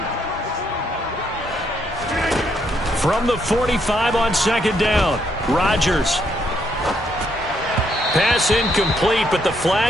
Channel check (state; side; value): normal; both; correlation 0.74